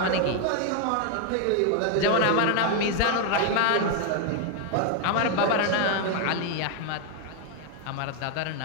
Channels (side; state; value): both; different; correlation 0.01